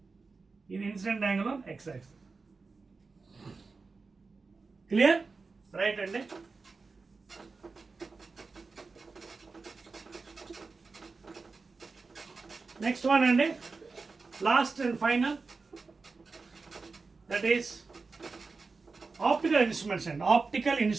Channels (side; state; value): left; quieter; 4.2 dB